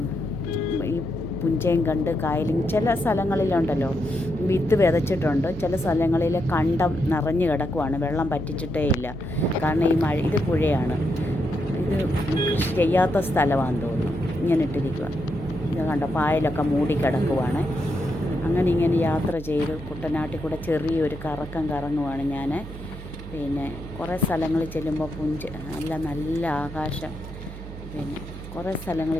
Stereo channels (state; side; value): noise; right; hum, 12 dB below the sound